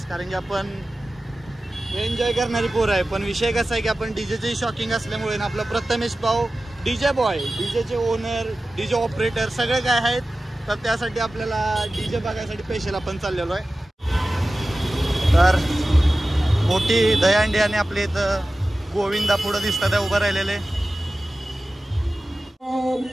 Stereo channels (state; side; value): normal; both; correlation 0.95